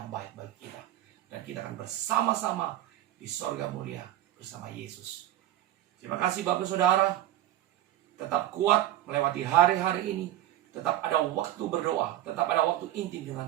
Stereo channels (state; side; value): quieter; left; 13.5 dB